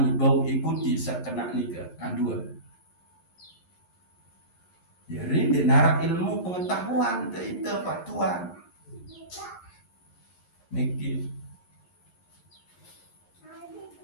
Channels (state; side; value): late; right; 11 ms